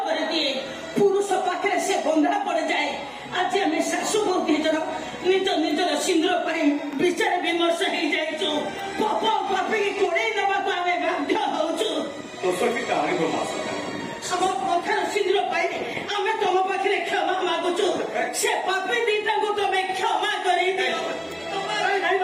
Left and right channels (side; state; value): both; identical; correlation 1.00